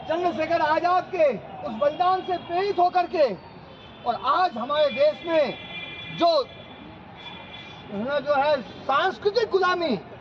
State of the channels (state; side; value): identical; both; correlation 1.00